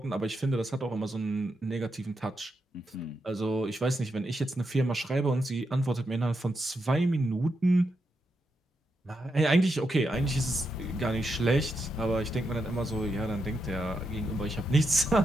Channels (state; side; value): normal; both; correlation 0.84